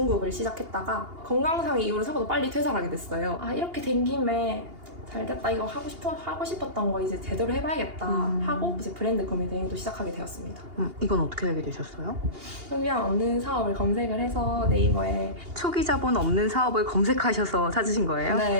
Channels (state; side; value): late; left; 2.8 ms